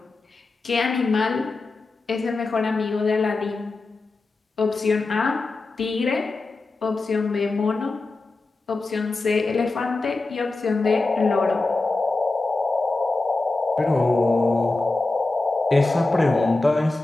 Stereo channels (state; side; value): quieter; right; 3.3 dB